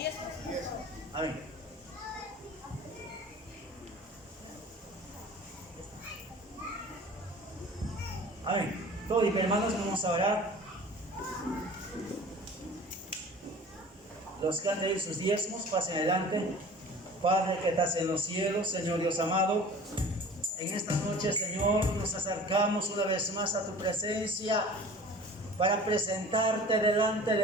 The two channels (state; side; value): normal; both; correlation 0.43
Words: Amén. Amén. Todos y hermanos, vamos a orar. Los que han traído sus diezmos, pasen adelante. Padre que estás en los cielos, Señor Dios amado, en esta noche, Señor, nos acercamos una vez más a tu presencia para presentarte delante